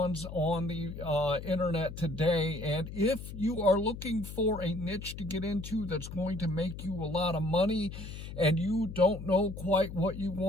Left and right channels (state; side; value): noise; left; hum, 10 dB below the sound